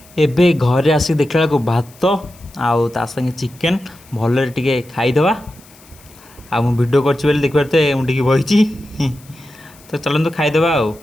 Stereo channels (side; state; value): left; noise; hiss, 25 dB below the sound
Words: एबे घरे आसिक देखला को भात आउ ता संगे चिकेन भल टे खाईदवा आ मु वीडियो कर देखते मुझे बही तो चलते खाईदवा आ